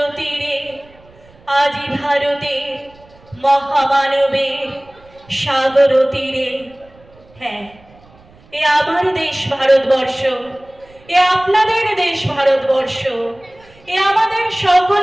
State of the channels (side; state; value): right; noise; rumble, 27 dB below the sound